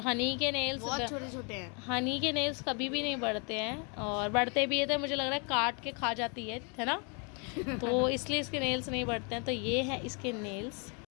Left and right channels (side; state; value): right; quieter; 35.7 dB